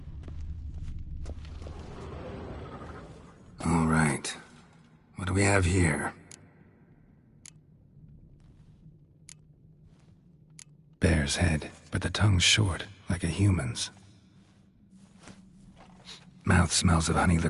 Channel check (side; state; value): both; identical; correlation 1.00